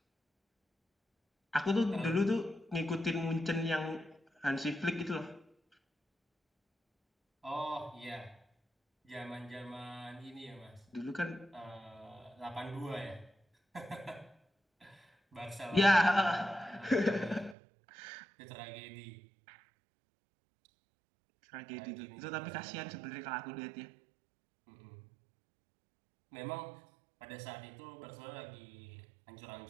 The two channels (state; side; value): drops out; left; at 17.6 s